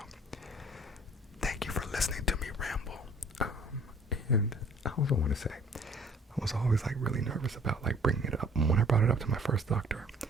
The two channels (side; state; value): both; normal; correlation 0.54